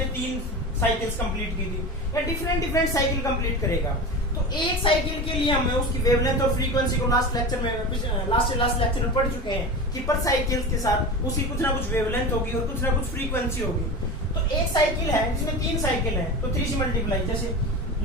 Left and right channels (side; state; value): both; normal; correlation 0.28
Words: 3 साइकिल्स कंप्लीट की थी, या डिफरेंट साइकिल कंप्लीट करेगा। तो एक साइकिल के लिए हमें उसकी वेवलेंथ और फ्रीक्वेंसी को लास्ट लेक्चर में पढ़ चुके हैं कि पर साइकिल के साथ उसकी कुछ ना कुछ वेवलेंथ होगी और कुछ ना कुछ फ्रीक्वेंसी होगी। तो एक साइकिल है जिसमें 3 साइकिल है तो 3 से मल्टीप्लाई, जैसे